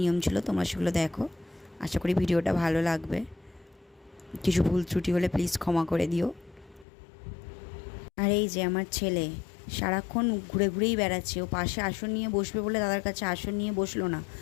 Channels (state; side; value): drops out; right; at 6.9 s